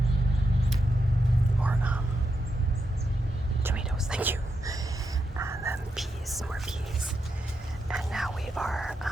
tomatoes, thank you. And then peas, more peas. And now we are,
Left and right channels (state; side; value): normal; both; correlation 0.85